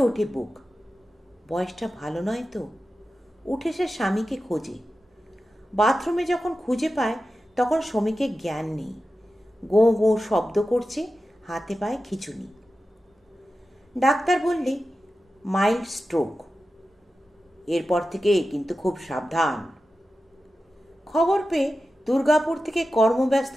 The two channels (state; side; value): normal; both; correlation 0.93